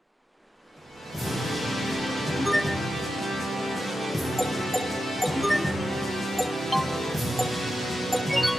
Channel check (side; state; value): both; normal; correlation 0.90